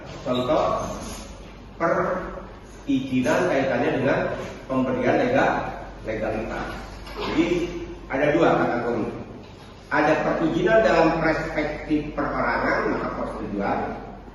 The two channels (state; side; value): identical; both; correlation 1.00